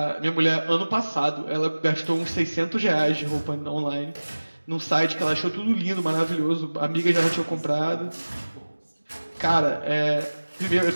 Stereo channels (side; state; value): both; inverted; correlation -1.00